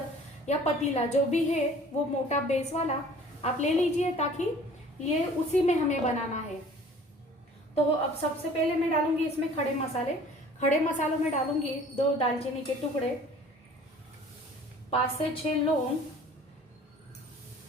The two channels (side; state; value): both; normal; correlation 0.49